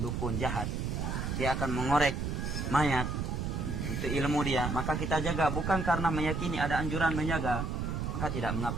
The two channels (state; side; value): noise; right; rumble, 2 dB below the sound